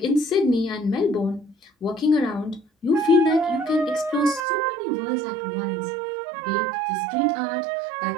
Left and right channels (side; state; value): left; drops out; at 4.5 s